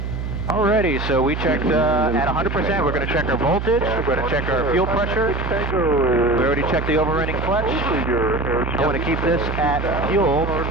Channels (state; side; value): noise; right; hum, 4 dB below the sound